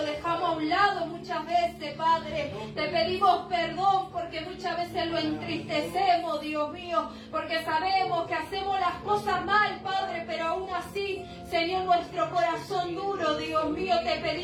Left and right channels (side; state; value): both; identical; correlation 1.00